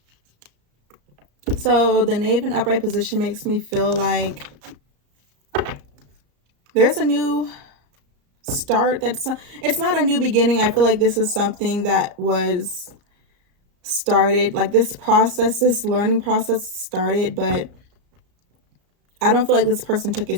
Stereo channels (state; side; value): late; left; 34 ms